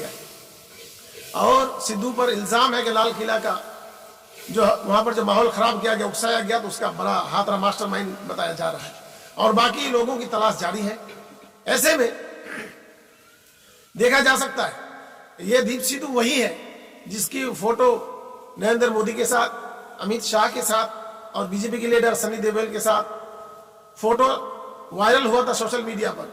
और सिद्धू पर इल्जाम है कि लाल किला का जो वहां पर जो माहौल खराब किया गया, उकसाया गया, तो उसका बड़ा हाथ रहा मास्टरमाइंड बताया जा रहा है और बाकी लोगों की तलाश जारी है। ऐसे में देखा जा सकता है ये दीप सिद्धू वही है जिसकी फोटो नरेंद्र मोदी के साथ, अमित शाह के साथ और बीजेपी के लीडर सनी देओल के साथ फोटो वायरल हुआ था सोशल मीडिया पर।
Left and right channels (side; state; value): both; identical; correlation 1.00